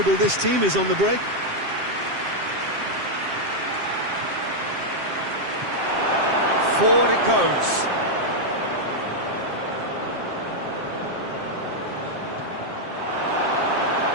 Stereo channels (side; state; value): left; late; 7.6 ms